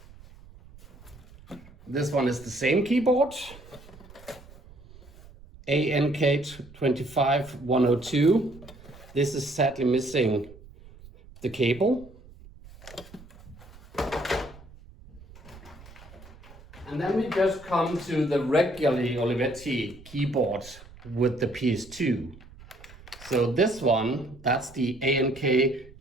This one is the same keyboard. ANK 25102. This is sadly missing the cable. And then we just come to the regularly Olivetti keyboard with the PS2. So this one, that's the ANK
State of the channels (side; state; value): right; noise; rumble, 21 dB below the sound